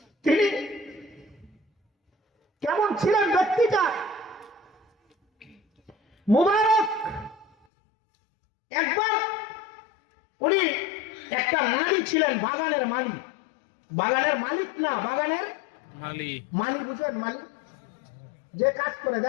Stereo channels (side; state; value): right; drops out; at 7.5 s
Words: তিনি কেমন ছিলেন ব্যক্তিটা? মুবারক একবার উনি একটা মালি ছিলেন, বাগানের মালি। বাগানের মালিক না, বাগানের মালি, বুঝলেন? মালি যে কাজ করে,